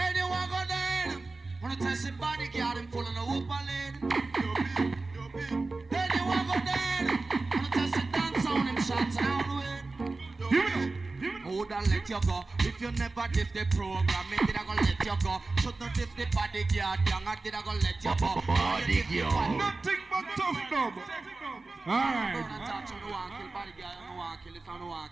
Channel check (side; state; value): left; quieter; 3.5 dB